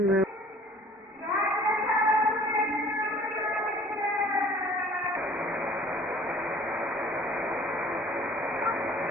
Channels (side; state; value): both; normal; correlation 0.51